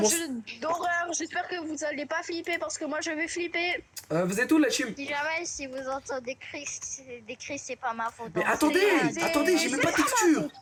un jeu d'horreur. J'espère que vous allez pas flipper parce que moi je vais flipper. Vous êtes où, la team? Si jamais si vous entendez des cris, c'est pas ma faute. Mais hein. attendez, j'ai même pas de texture.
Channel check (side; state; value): both; identical; correlation 1.00